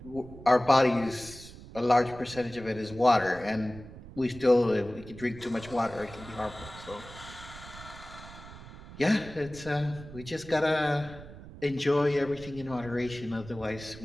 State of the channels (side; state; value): right; noise; rumble, 16 dB below the sound